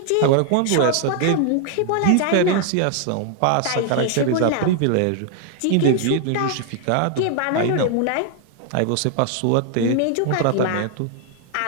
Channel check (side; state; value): both; different; correlation 0.00